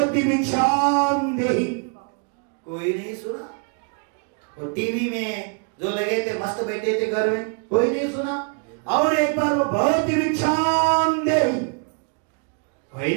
भिक्षाम देहि। कोई नहीं सुना। और टीवी में जो लगे थे मस्त बैठे थे घर में, कोई नहीं सुना। और एक बार वो भवती भिक्षाम देहि। भाई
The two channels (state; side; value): quieter; left; 38.4 dB